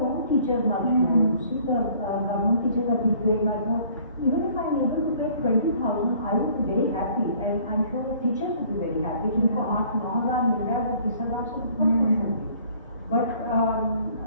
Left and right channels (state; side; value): inverted; both; correlation -0.55